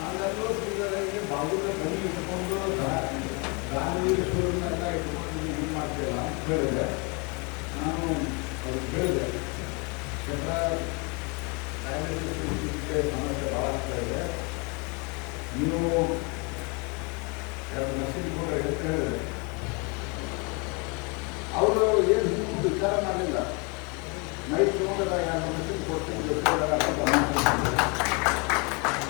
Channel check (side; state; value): right; quieter; 31.5 dB